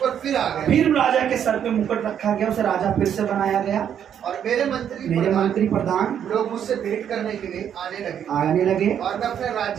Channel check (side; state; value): left; quieter; 9.0 dB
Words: फिर आ गया। फिर राजा के सर पे मुकुट रखा गया, उसे राजा फिर से बनाया गया, और मेरे मंत्री प्रधान लोग मुझसे भेंट करने के लिए आने लगे, और मैं अपने